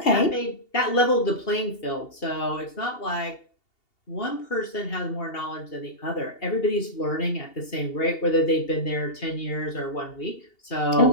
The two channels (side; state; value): right; late; 2.8 ms